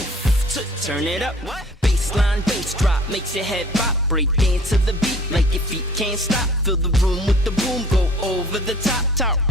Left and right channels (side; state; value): both; normal; correlation 0.51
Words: turn it up. Bassline, bass drop makes your head pop. Break dance to the beat like your feet can't stop. Fill the room with the boom, go over the top.